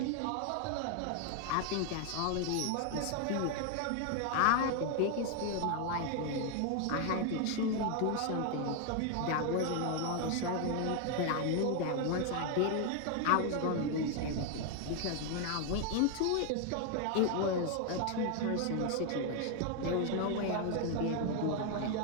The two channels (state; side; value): different; both; correlation 0.00